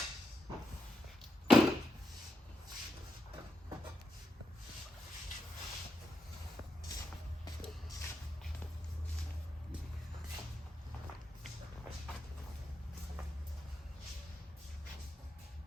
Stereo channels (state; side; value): normal; both; correlation 0.83